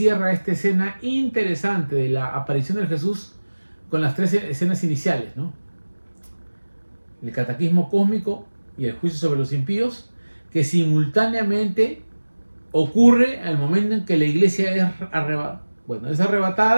esta escena interesante de la aparición de Jesús con las tres escenas iniciales, ¿no? El cataclismo cósmico y el juicio sobre los impíos, que simultáneamente ocurre al momento en que la iglesia es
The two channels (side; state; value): both; inverted; correlation -1.00